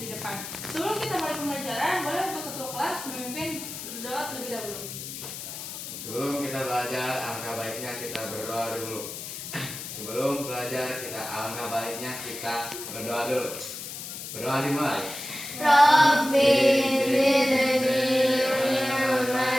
depan. Sebelum kita mulai pembelajaran, boleh untuk ketua kelas memimpin berdoa terlebih dahulu. Sebelum kita belajar, alangkah baiknya kita berdoa dulu. Sebelum belajar, alangkah baiknya kita berdoa dulu. Berdoa dimulai. Rabbi zidni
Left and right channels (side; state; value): left; noise; hiss, 9 dB below the sound